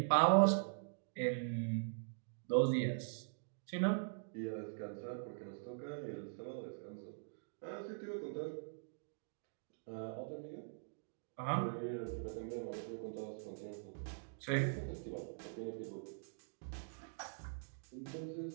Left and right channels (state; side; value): silent; left; digital silence